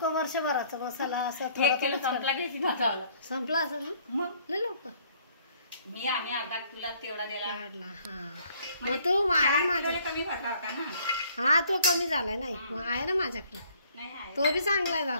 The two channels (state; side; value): inverted; both; correlation -0.60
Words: वर्षभराचा मसाला असं 1 किलो संपला घ्यायची माझा संपला असेल ना मग लय लोक. आम्ही अर्धा तुला तेवढा द्यायला काढला. हा मग तू आहे माझ्या कमी भरला होता ना. हा तो कमी झालाय. नाही मग आहे ना माझ्याकडे. नाही आहे तो बी चांगला